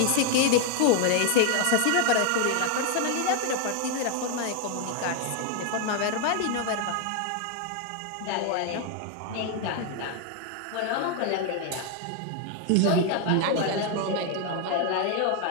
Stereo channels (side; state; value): both; different; correlation 0.01